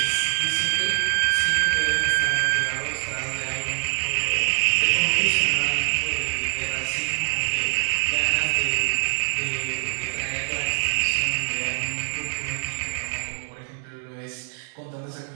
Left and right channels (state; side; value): silent; left; 62 dB below the other